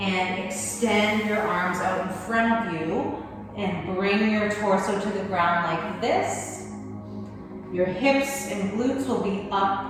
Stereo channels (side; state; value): both; identical; correlation 1.00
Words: and extend your arms out in front of you, and bring your torso to the ground like this. Your hips and glutes will be up,